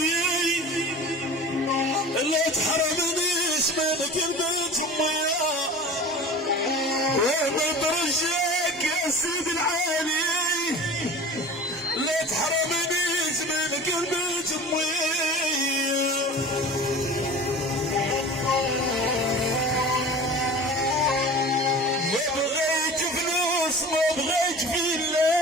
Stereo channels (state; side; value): normal; both; correlation 0.38